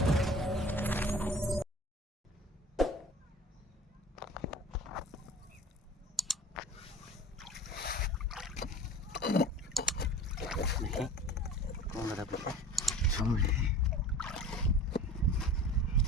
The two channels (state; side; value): normal; both; correlation 0.40